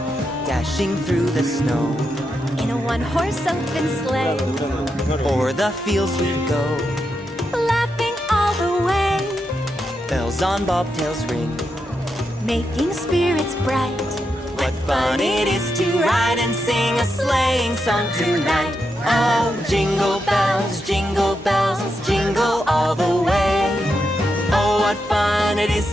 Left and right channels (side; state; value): both; normal; correlation 0.85